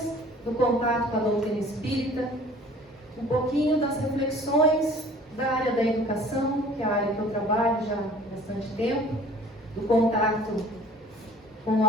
do contato com a doutrina espírita, um pouquinho das reflexões da área da educação, que é a área que eu trabalho já há bastante tempo, do contato com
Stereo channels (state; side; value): normal; both; correlation 0.50